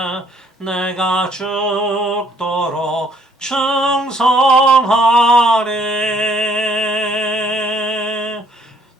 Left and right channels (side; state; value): both; normal; correlation 0.64